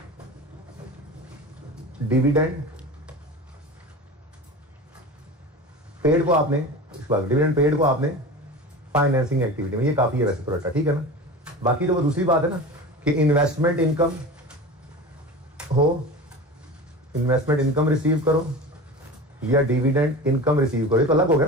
डिविडेंड पेड को आपने, डिविडेंड पेड को आपने फाइनेंसिंग एक्टिविटी में, ये काफी है वैसे तो रट्टा, ठीक है ना। बाकी जो वो दूसरी बात है ना कि इन्वेस्टमेंट इनकम हो, इन्वेस्टमेंट इनकम रिसीव करो या डिविडेंड इनकम रिसीव करो, ये तो अलग हो गया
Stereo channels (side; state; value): both; normal; correlation 0.32